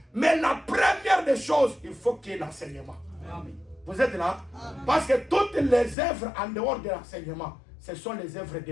Mais la première des choses, il faut qu'il y ait l'enseignement. Vous êtes là? Parce que toutes les œuvres en dehors de l'enseignement, ce sont les œuvres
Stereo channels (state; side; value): drops out; right; at 6.0 s